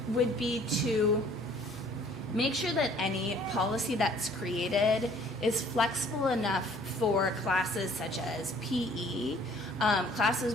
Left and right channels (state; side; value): normal; both; correlation 0.56